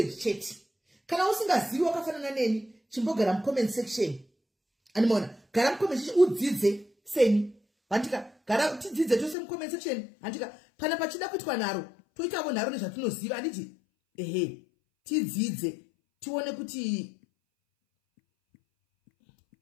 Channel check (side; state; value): right; drops out; at 9.3 s